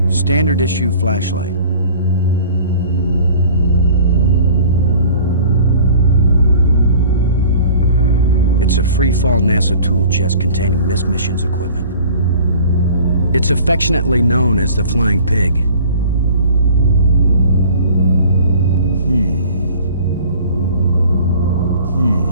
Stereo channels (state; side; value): inverted; both; correlation -0.47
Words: Standard issue flashlight. It's a free-fall NASA tool chest containing this mission's equipment. It's affectionately known as the Flying Pig.